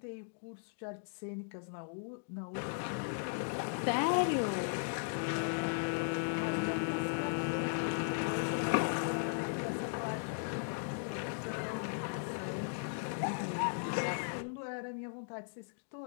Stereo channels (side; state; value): right; silent; digital silence